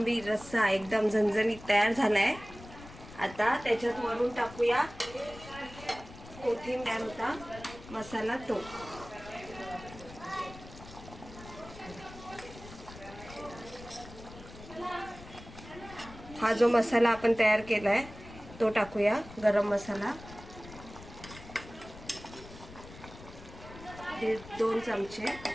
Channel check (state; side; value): noise; left; rumble, 16 dB below the sound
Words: रस्सा एकदम झणझणीत तयार झालाय. आता त्याच्यात वरून टाकूया कोथिंबीर होता मसाला तो. हा जो मसाला आपण तयार केलाय तो टाकूया, गरम मसाला 1.5-2 चमचे